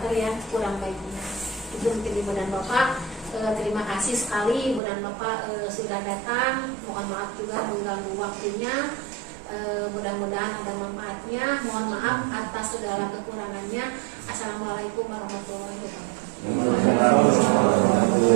yang kurang baiknya. Itu mungkin ibu dan bapak. Terima kasih sekali ibu dan bapak sudah datang. Mohon maaf juga mengganggu waktunya. Mudah-mudahan ada manfaatnya. Mohon maaf atas segala kekurangannya. Assalamualaikum warahmatullahi wabarakatuh.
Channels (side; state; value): left; drops out; at 4.8 s